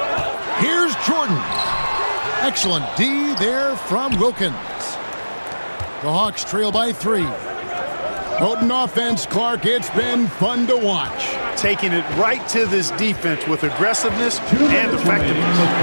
Here's Jordan. Excellent D there from Wilkins. The Hawks trail by 3. Potent offense, Clark. It's been fun to watch. Taking it right to this defense with aggressiveness and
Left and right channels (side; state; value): both; inverted; correlation -1.00